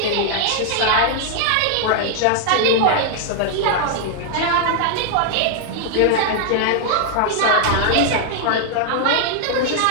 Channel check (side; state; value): both; different; correlation 0.00